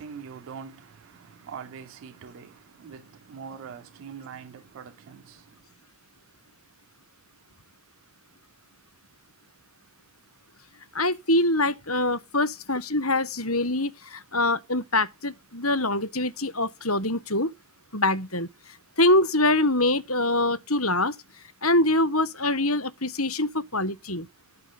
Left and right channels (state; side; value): normal; both; correlation -0.09